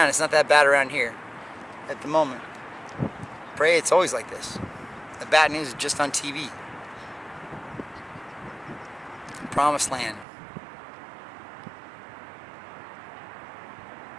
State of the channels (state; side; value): drops out; left; at 10.2 s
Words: it's not that bad around here at the moment. Pray it's always like this. The bad news is just on TV. Promised land.